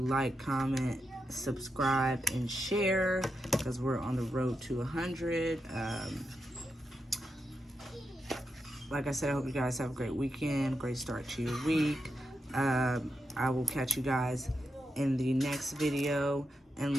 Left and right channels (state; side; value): normal; both; correlation 0.86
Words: like, comment, subscribe, and share, because we're on the road to 100. Like I said, I hope you guys have a great weekend, great start to your week. I will catch you guys in the next video. And